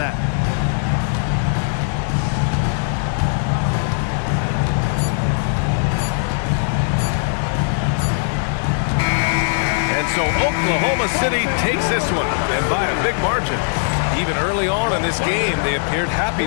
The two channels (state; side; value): silent; right; 66 dB below the other